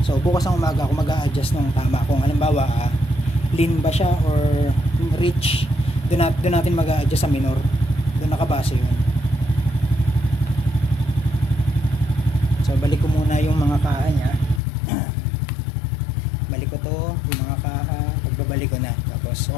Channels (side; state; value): right; drops out; at 14.6 s